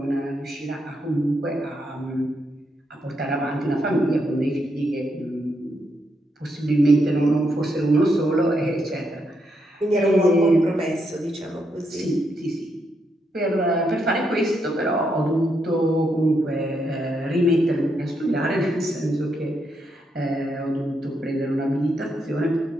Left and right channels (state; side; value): normal; both; correlation 0.79